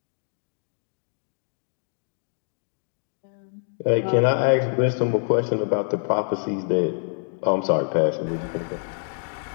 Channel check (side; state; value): right; silent; digital silence